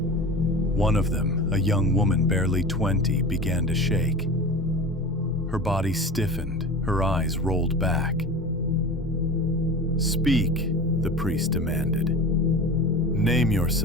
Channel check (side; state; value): both; normal; correlation 0.33